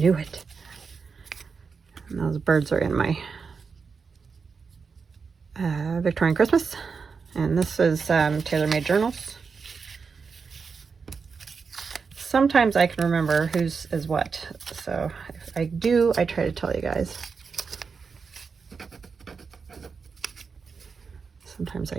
it. And those birds are in my Victorian Christmas. And this is tailor-made journals. Sometimes I can remember whose is what. So if I do, I try to tell you guys. Sometimes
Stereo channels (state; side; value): quieter; left; 5.3 dB